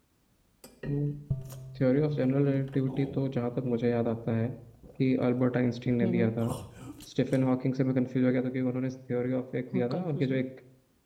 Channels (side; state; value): both; identical; correlation 1.00